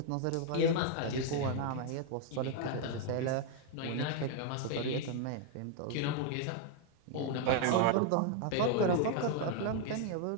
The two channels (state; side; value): different; both; correlation 0.00